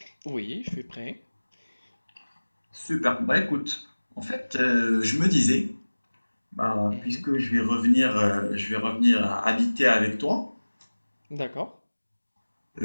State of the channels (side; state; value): both; inverted; correlation -1.00